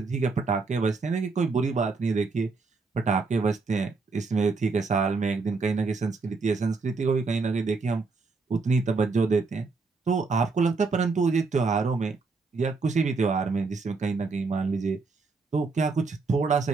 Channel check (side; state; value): left; quieter; 4.2 dB